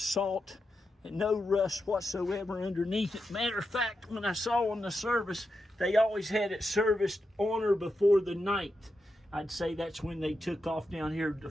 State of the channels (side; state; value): both; normal; correlation 0.87